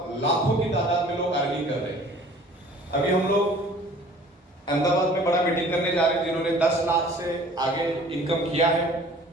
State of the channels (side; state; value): both; normal; correlation 0.50